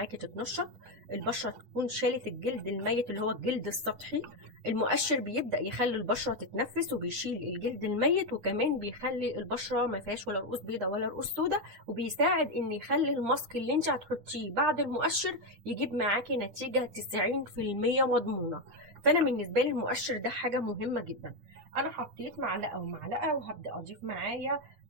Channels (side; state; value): left; late; 9.8 ms